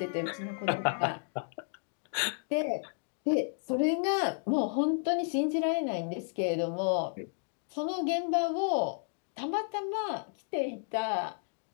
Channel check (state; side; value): silent; right; digital silence